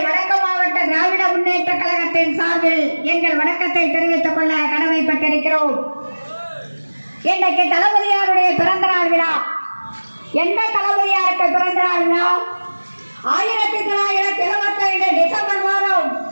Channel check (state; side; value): inverted; both; correlation -1.00